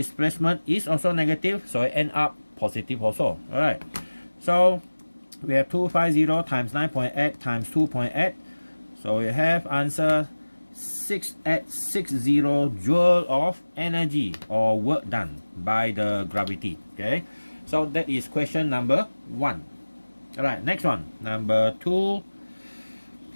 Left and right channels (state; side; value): inverted; both; correlation -1.00